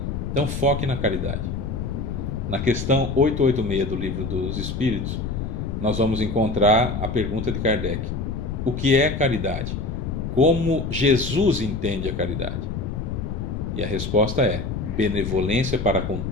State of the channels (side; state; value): left; noise; rumble, 4 dB below the sound